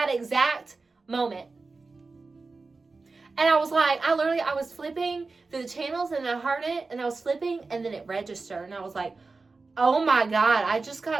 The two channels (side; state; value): left; quieter; 3.9 dB